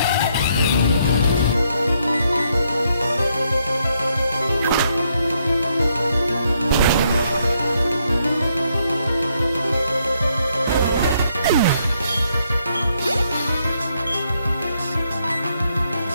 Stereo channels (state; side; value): inverted; both; correlation -0.75